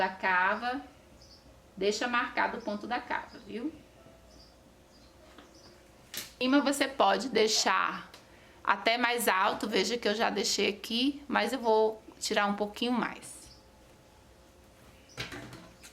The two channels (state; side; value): identical; both; correlation 1.00